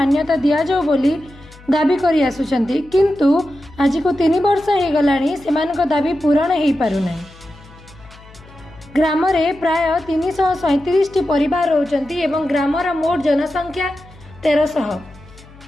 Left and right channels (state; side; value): noise; left; hum, 23 dB below the sound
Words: दि जाऊ बोली दाबी करि आसुछंती, किंतु आज को 3 वर्ष हो गलानी सेमानक दाबी पूरण हो पारुना। ग्राम रे प्राय 337 परिवार रहउछंती एवं ग्रामर मोट जनसंख्या 1300।